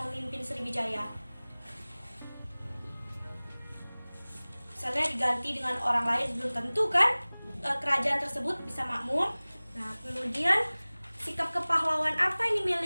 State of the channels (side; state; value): both; inverted; correlation -1.00